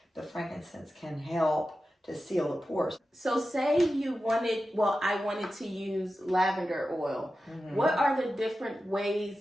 the frankincense can help to seal the pores. So say I wanted to use lavender oil. What are the different ways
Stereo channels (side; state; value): both; normal; correlation 0.93